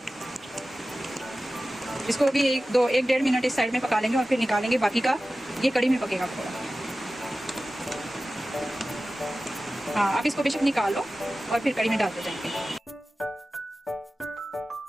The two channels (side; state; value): both; normal; correlation 0.95